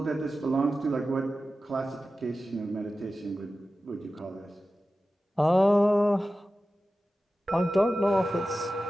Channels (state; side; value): normal; both; correlation 0.94